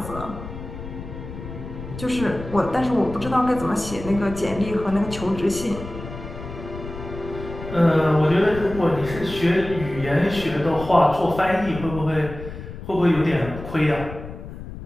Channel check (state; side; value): noise; left; rumble, 11 dB below the sound